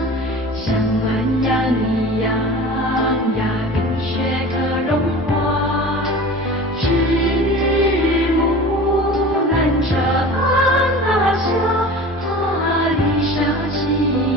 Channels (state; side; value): normal; both; correlation 0.37